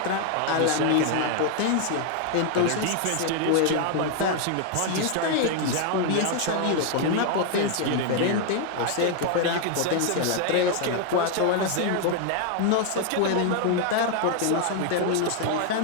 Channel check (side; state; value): both; different; correlation 0.00